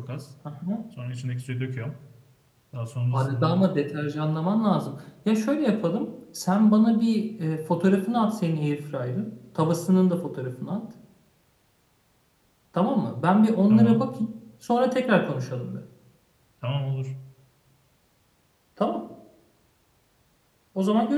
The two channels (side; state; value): both; identical; correlation 1.00